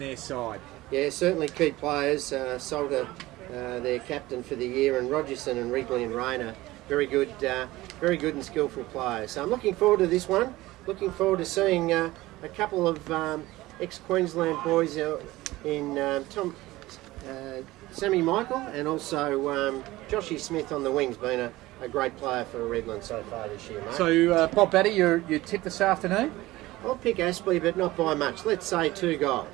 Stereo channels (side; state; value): left; quieter; 18.2 dB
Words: side. Yeah, certainly key players. Salter, their captain for the year, and Rogerson and Wrigley and Rayner, very good and skillful players. So I'm looking forward to this one. Looking forward to seeing a couple of ex-Queensland boys in Sammy Michael and also Joshy Smith on the wings, being a great player for Redland so far this year, mate. So, Bob Batty, you tip this afternoon? I'll pick Aspley, but not by much. Let's say 2